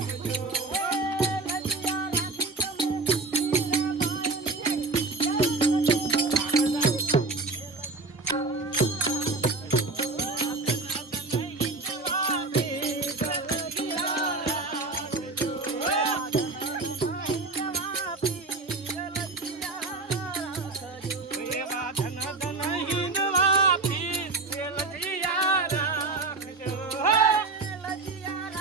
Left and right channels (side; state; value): left; quieter; 3.7 dB